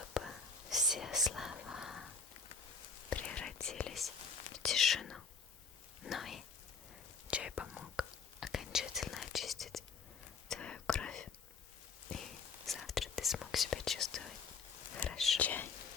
все слова превратились в тишину. Но и чай помог окончательно очистить твою кровь, и завтра ты смог себя чувствовать хорошо. Чай,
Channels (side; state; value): right; quieter; 5.1 dB